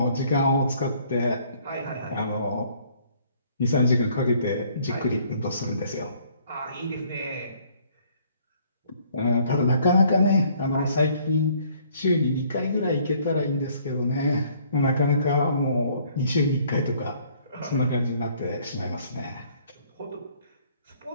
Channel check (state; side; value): inverted; both; correlation -0.61